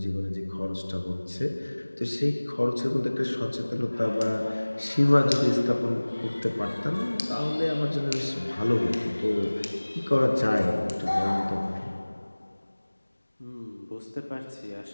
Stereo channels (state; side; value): inverted; both; correlation -1.00